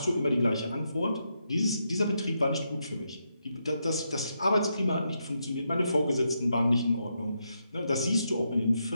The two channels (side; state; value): both; inverted; correlation -0.82